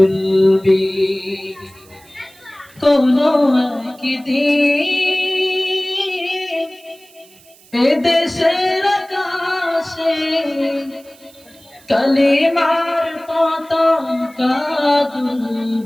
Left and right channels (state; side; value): noise; right; hiss, 26 dB below the sound